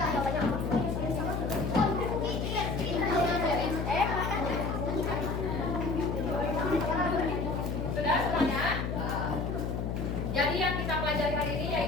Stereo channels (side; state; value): left; noise; hum, 1 dB below the sound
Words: semuanya? Jadi yang kita pelajari hari ini